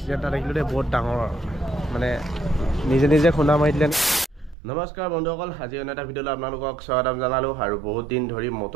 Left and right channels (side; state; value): left; drops out; at 4.5 s